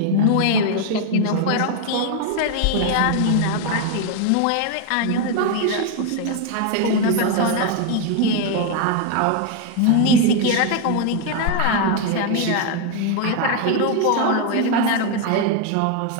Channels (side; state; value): both; different; correlation 0.01